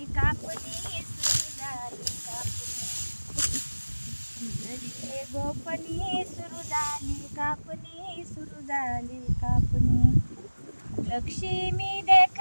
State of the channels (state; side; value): inverted; both; correlation -1.00